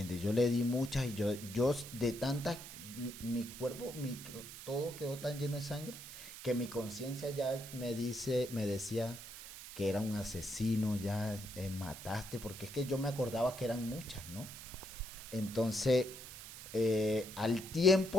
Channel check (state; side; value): noise; right; hiss, 12 dB below the sound